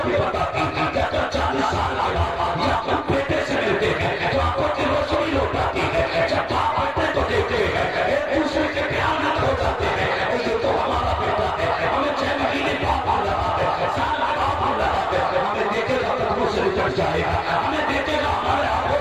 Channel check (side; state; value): both; identical; correlation 1.00